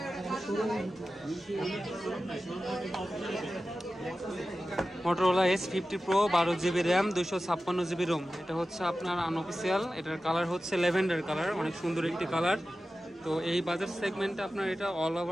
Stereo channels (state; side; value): normal; both; correlation 0.94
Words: Motorola H50 Pro 12GB RAM 256GB ROM। এটা হচ্ছে আপনার আনঅফিসিয়াল। এটার কালার হচ্ছে ল্যাভেন্ডার কালার, অনেক সুন্দর একটি কালার। তো এই বাজার সেগমেন্টে আপনার এটা অল